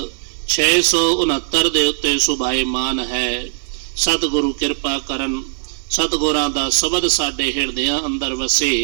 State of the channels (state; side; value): silent; left; 67 dB below the other